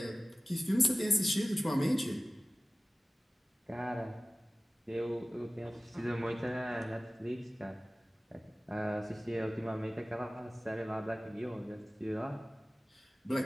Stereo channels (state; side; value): normal; both; correlation 0.97